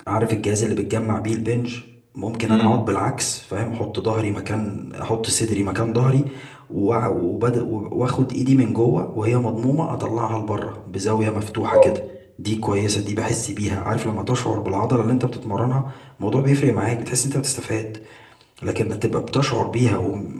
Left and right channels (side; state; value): both; identical; correlation 1.00